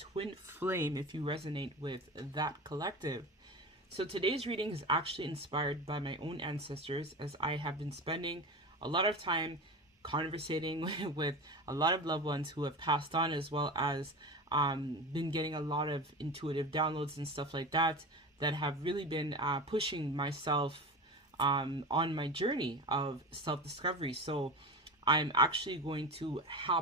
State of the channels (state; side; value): normal; both; correlation 0.27